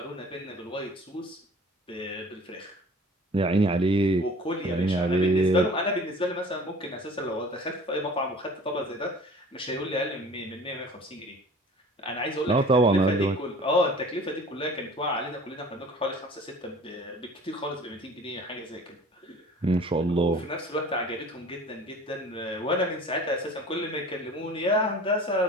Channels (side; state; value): both; normal; correlation 0.45